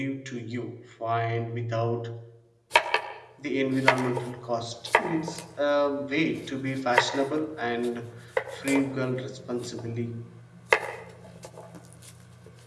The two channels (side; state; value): both; identical; correlation 1.00